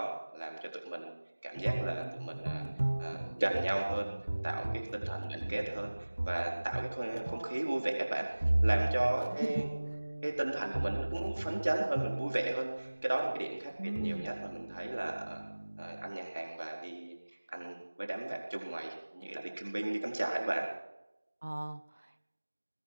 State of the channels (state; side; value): inverted; both; correlation -1.00